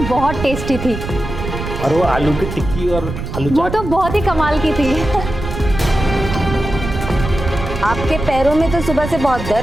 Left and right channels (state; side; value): noise; right; rumble, 7 dB below the sound